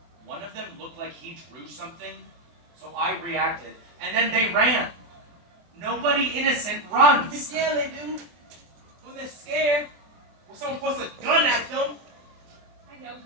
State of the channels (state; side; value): late; left; 24 ms